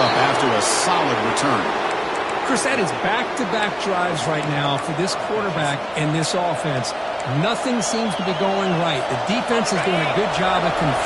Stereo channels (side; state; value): both; identical; correlation 1.00